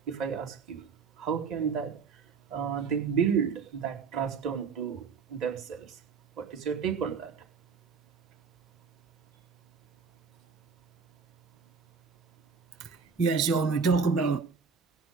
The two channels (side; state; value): left; quieter; 5.5 dB